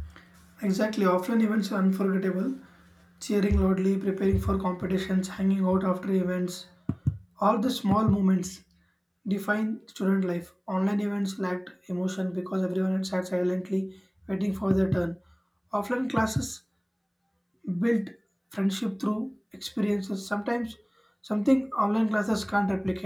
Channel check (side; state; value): both; identical; correlation 1.00